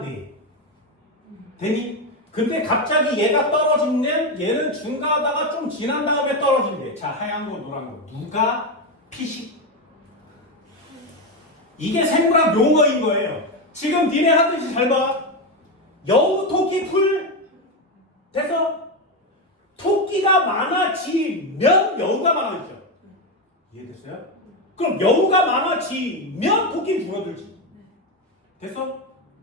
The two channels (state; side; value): normal; both; correlation 0.10